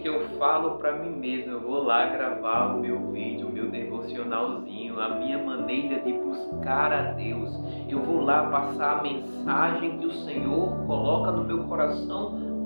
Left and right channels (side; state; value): both; inverted; correlation -1.00